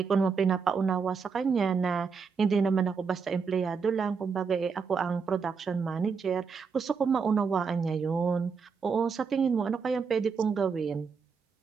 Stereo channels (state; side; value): quieter; left; 5.6 dB